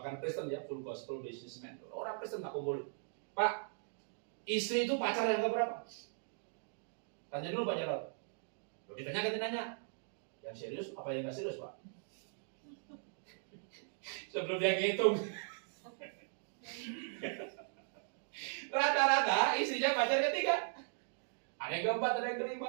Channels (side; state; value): left; silent; digital silence